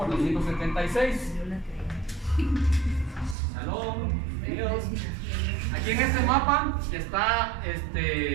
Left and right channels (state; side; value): drops out; left; at 3.4 s